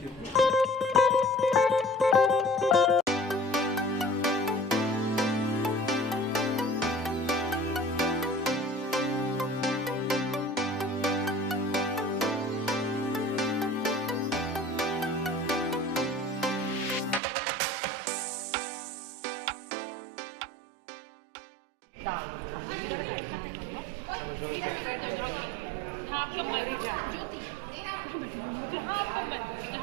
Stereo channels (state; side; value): drops out; left; at 17.2 s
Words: you. आप लोग मर जाए ज्योति, जहाँ आपको मन,